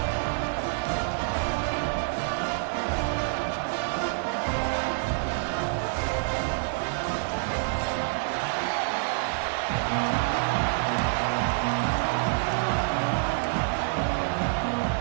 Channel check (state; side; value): silent; left; 59 dB below the other